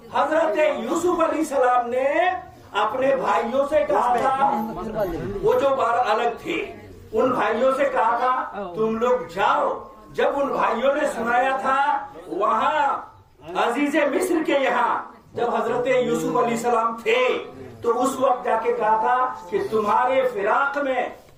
حضرت یوسف علیہ السلام نے اپنے بھائیوں سے کہا تھا، وہ جو بار الگ تھے ان بھائیوں سے کہا تھا تم لوگ جاؤ. جب ان بھائیوں نے سنایا تھا وہاں عزیز مصر کے یہاں جب حضرت یوسف علیہ السلام تھے تو اس وقت جا کے کہا تھا کہ تمہارے فراق میں،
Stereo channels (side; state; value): both; identical; correlation 1.00